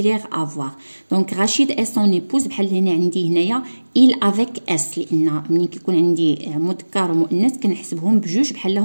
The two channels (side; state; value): both; inverted; correlation -1.00